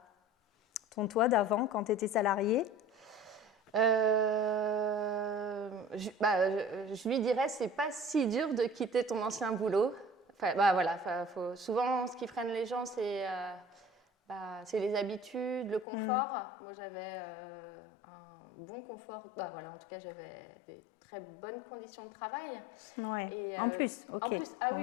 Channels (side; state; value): right; drops out; at 15.9 s